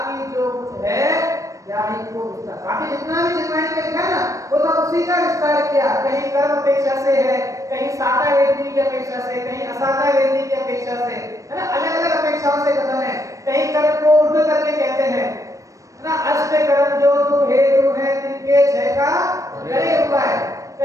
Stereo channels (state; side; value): late; left; 0.16 ms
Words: जो कुछ है याही को विस्तार। बाकी जितना भी जिनवाणी में लिखा ना, वो सब उसी का विस्तार किया। कहीं कर्म अपेक्षा से है, कहीं साता वेदनी की अपेक्षा से, कहीं असाता वेदनी की अपेक्षा से, है ना, अलग अलग अपेक्षाओं से कथन है। कहीं कर्म को उर्ध करके कहते हैं ना, अष्ट कर्म जो तू हेतु है तिनके 6 का करे उपाय।